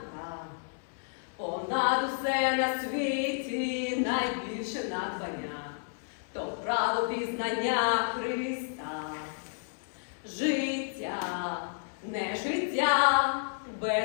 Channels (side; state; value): right; silent; digital silence